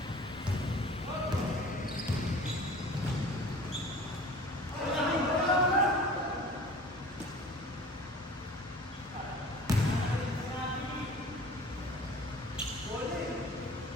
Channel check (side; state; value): both; normal; correlation 0.43